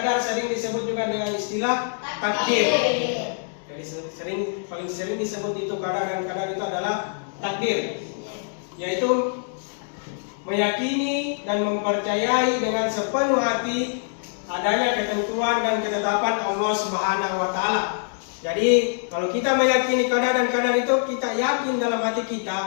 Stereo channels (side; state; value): right; silent; digital silence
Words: sering disebut juga dengan istilah takdir. Jadi paling sering disebut itu qada dan qadar itu adalah takdir, yaitu meyakini dan mempercayai dengan sepenuh hati adanya ketentuan dan ketetapan Allah Subhanahu wa taala. Jadi kalau kita meyakini qada dan qadar itu, kita yakin dalam hati